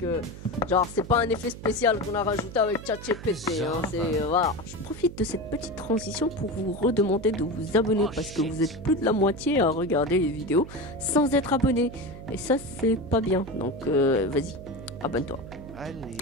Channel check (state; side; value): noise; right; hum, 14 dB below the sound